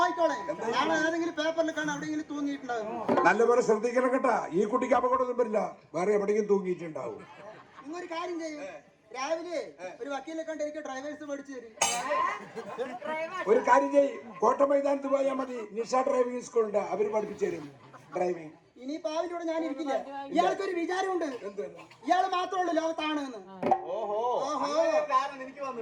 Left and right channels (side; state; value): both; identical; correlation 1.00